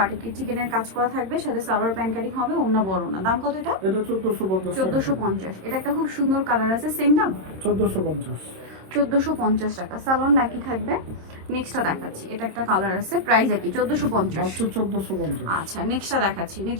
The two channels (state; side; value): late; left; 26 ms